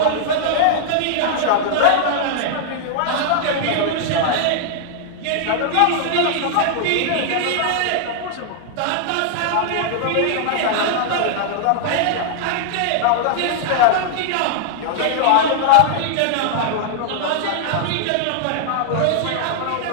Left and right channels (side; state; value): both; different; correlation -0.01